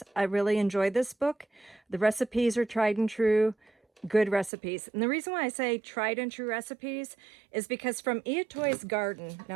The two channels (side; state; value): left; drops out; at 4.5 s